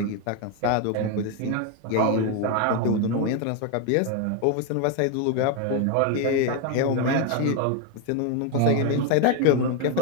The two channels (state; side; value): different; both; correlation 0.01